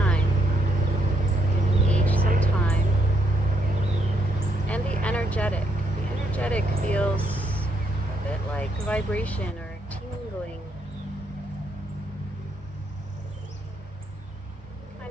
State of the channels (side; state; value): both; normal; correlation 0.74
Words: Give each some time. And the energetic. The energetic feels a bit like vibration or tingling.